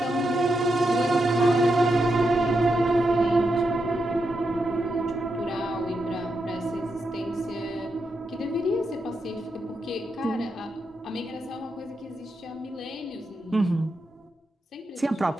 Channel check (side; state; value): both; normal; correlation 0.85